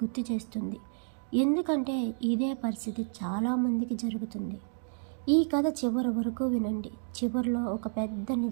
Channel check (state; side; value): silent; left; 57 dB below the other